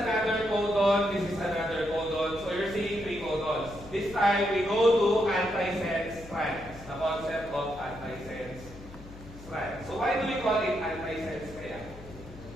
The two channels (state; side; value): noise; left; hum, 17 dB below the sound